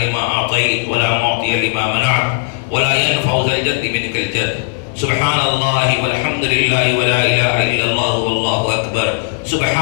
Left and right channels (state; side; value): silent; right; 63 dB below the other